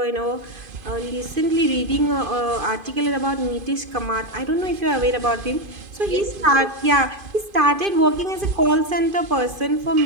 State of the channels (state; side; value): late; left; 2.5 ms